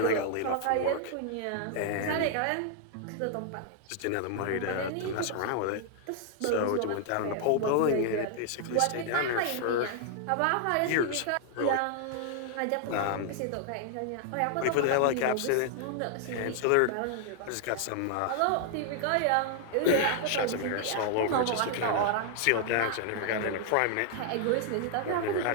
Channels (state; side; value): different; both; correlation 0.00